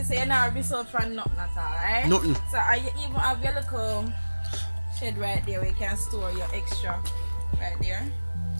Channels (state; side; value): inverted; both; correlation -1.00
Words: so you're not result from nothing at all, right? Nothing. So, you even have your little shed right there where you can store your extra right there.